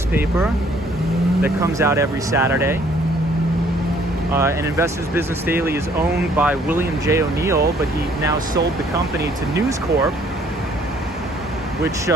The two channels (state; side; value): normal; both; correlation 0.61